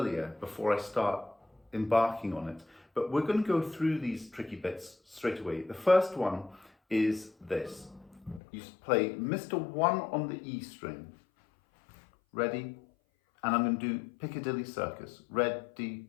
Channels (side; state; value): right; drops out; at 8.4 s